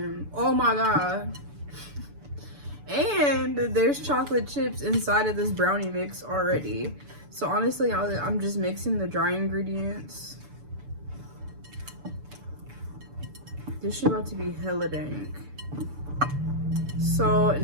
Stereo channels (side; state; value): left; late; 6.9 ms